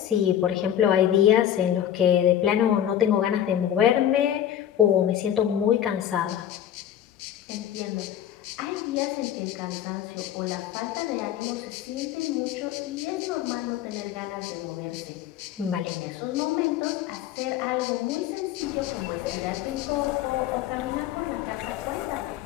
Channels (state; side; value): quieter; right; 10.7 dB